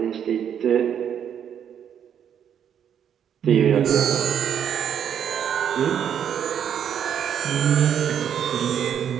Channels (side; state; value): left; quieter; 8.8 dB